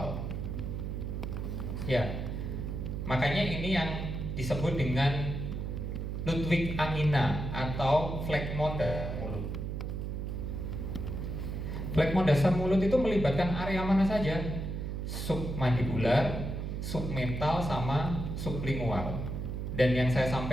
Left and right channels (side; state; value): right; noise; hum, 4 dB below the sound